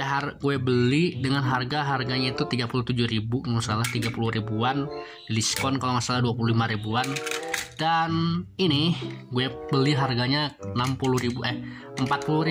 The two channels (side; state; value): both; identical; correlation 1.00